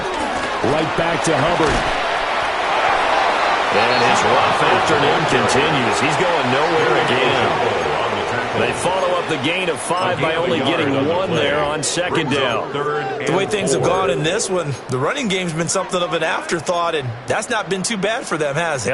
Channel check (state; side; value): identical; both; correlation 1.00